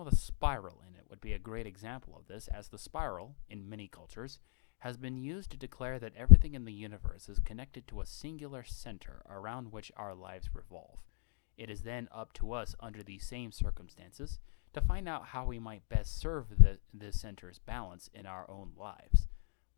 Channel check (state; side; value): silent; right; 53 dB below the other